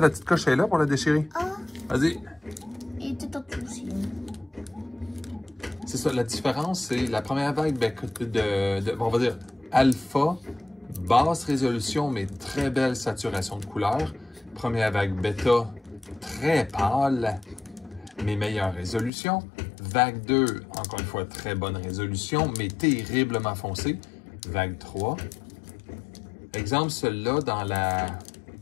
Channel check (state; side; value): drops out; right; at 19.1 s